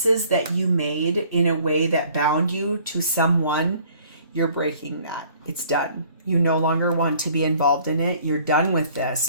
that you made in a way that bound you to someone, You're breaking that. It's done. You no longer want to be involved in it. You're done with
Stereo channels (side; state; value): both; inverted; correlation -0.56